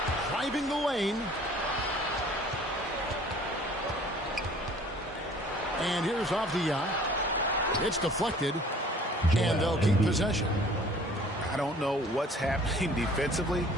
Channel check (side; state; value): both; normal; correlation 0.52